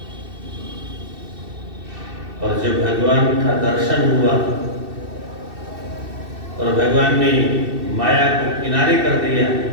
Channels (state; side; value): late; left; 2.7 ms